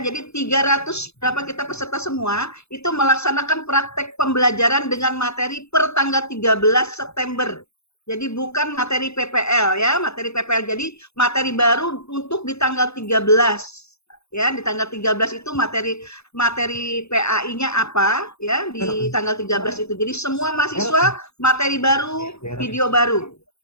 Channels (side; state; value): right; late; 0.79 ms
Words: Jadi 300 berapa kita peserta semua itu melaksanakan praktek pembelajaran dengan materi per tanggal 13 September. Jadi bukan materi PPL ya, materi PPL. Jadi materi baru untuk di tanggal 13 ya, di tanggal 13 itu materi PAI-nya apa ya, di tanggal 13 itu. Jadi semua mahasiswa materi baru, video baru.